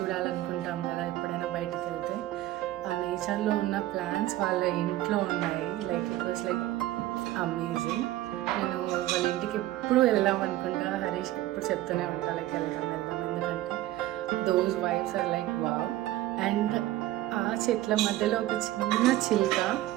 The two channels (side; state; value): left; quieter; 15.3 dB